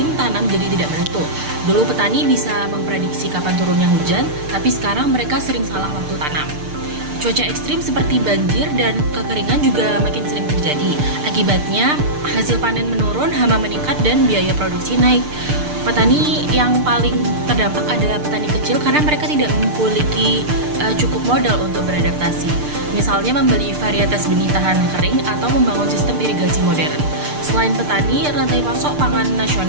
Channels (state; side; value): late; left; 6.7 ms